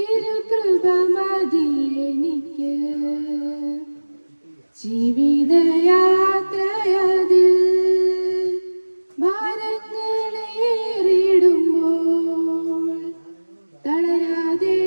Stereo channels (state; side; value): inverted; both; correlation -1.00